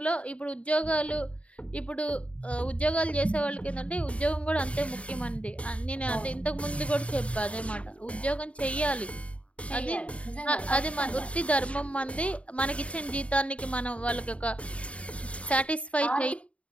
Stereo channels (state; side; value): late; right; 0.064 ms